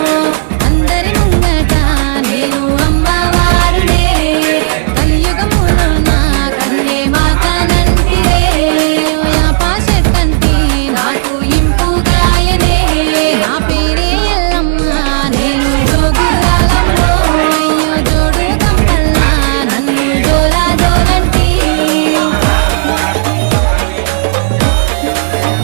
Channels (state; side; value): silent; left; digital silence